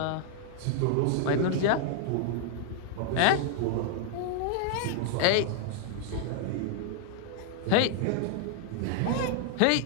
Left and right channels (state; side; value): different; both; correlation -0.01